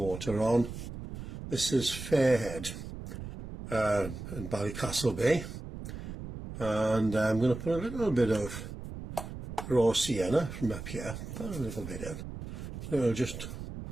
on. This is Fairhead in Ballycastle Bay, and I'm going to put a little bit of raw sienna from up here, put a little bit in. So it'll just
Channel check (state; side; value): noise; right; rumble, 9 dB below the sound